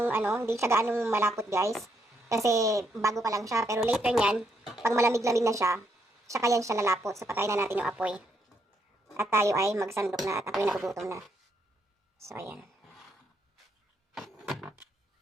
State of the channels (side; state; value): both; normal; correlation 0.76